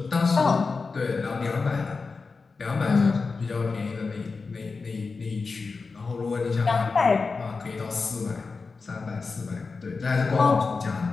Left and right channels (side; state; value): right; quieter; 4.4 dB